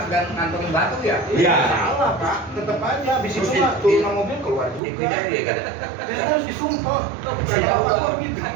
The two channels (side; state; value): left; drops out; at 4.8 s